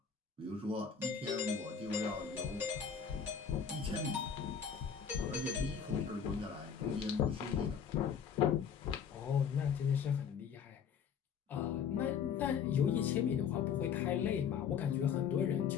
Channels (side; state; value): right; quieter; 7.3 dB